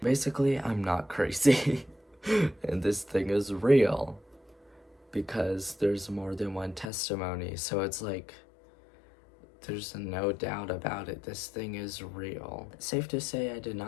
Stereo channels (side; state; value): right; drops out; at 6.9 s